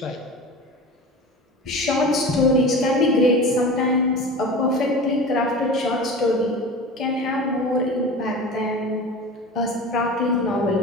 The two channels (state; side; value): normal; both; correlation 0.34